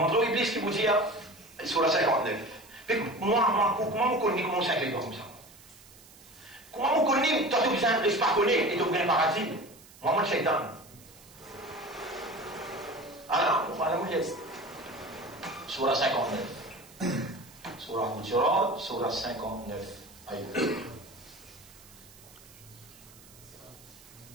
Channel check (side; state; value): right; noise; hiss, 22 dB below the sound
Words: l'Iblis qui vous dit sur la 59. Moi, comment vous connaissez comment ça arrive comme ça? Comment vous connaissez, toi tu ne reste pas connu et tu viens paradis? Moi, je suis shaitan. Alors, voilà, vous êtes. Sur la 59. Sur la Hujurat, sur la 59. Aïe.